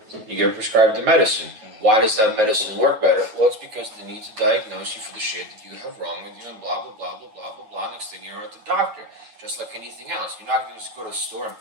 you get prescribed the medicine. Why does that medicine work better? Well, it's because they need to diagnose you for the shit that you have wrong with you and blah, blah, blah, blah, blah, blah, blah. Next thing you're at the doctor. Just like anything else. You're not going to just go to the store and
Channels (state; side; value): late; left; 9.4 ms